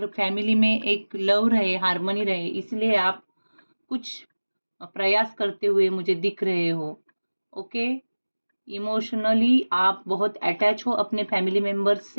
फैमिली में एक लव रहे, हार्मनी रहे, इसलिए आप कुछ प्रयास करते हुए मुझे दिख रहे हो। ओके, इमोशनली आप बहुत अटैच हो अपने फैमिली मेंबर्स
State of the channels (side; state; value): both; inverted; correlation -1.00